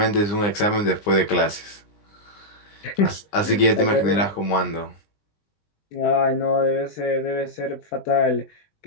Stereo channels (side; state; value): right; late; 19 ms